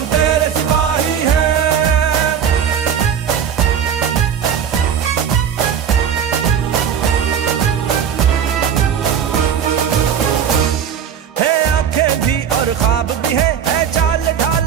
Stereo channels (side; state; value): left; quieter; 8.2 dB